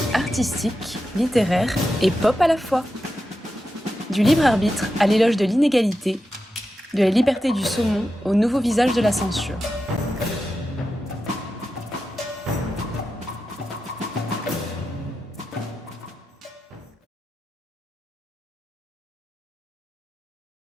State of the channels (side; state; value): both; normal; correlation 0.90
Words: artistique, littéraire et pop à la fois. Du libre arbitre à l'éloge de l'inégalité, de la liberté du saumon au nouveau visage de la censure.